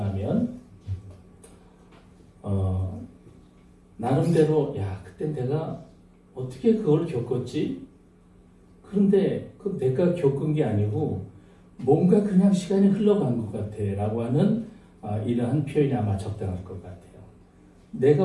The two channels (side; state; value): both; identical; correlation 1.00